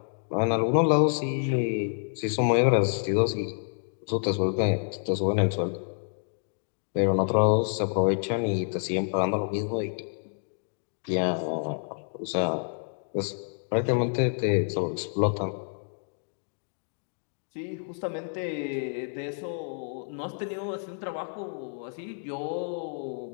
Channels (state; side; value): silent; right; digital silence